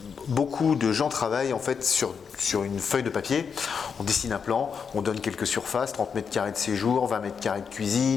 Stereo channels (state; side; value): quieter; right; 6.3 dB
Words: beaucoup de gens travaillent en fait sur une feuille de papier. On dessine un plan, on donne quelques surfaces, 30 mètres carrés de séjour, 20 mètres carrés de